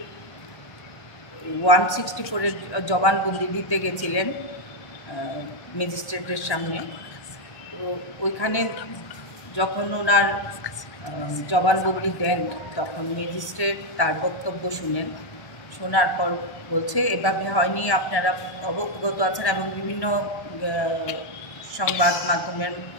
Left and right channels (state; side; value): late; right; 1.1 ms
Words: 164-এর জবানবন্দি দিতে গেছিলেন ম্যাজিস্ট্রেটের সামনে। তো ওইখানে যখন ওনার জবানবন্দি দেন তখন ম্যাজিস্ট্রেট তার বক্তব্য শোনার পর বলছে এভাবে হয়নি, আপনারা অবগত আছেন এবং বিভিন্ন সংবাদ মাধ্যমের